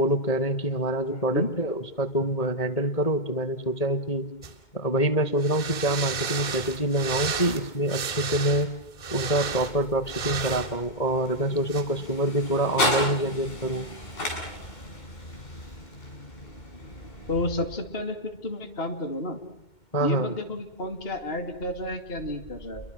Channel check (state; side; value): late; right; 2.2 ms